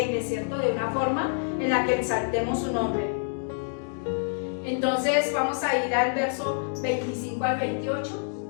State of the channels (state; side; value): silent; right; digital silence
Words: ¿cierto? De una forma en la que exaltemos su nombre. Entonces, vamos a ir al verso 25 al 28.